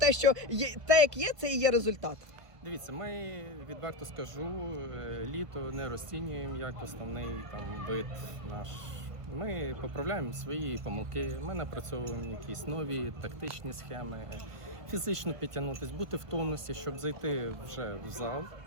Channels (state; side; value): late; left; 1.5 ms